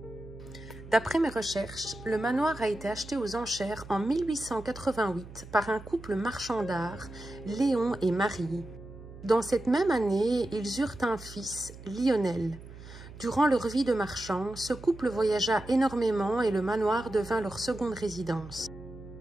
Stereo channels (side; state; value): right; noise; hum, 16 dB below the sound